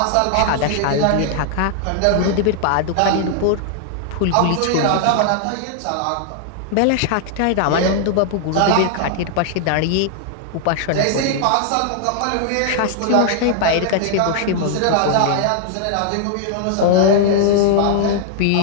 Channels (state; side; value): different; both; correlation 0.00